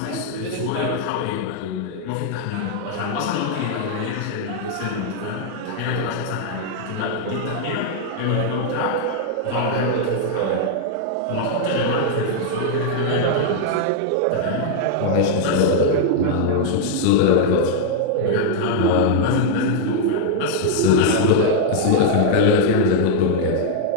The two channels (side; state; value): both; different; correlation -0.01